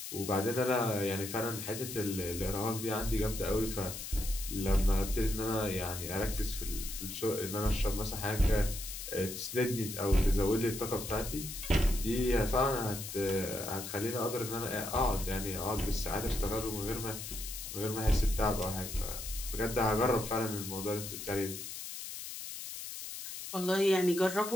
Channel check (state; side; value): noise; left; hiss, 8 dB below the sound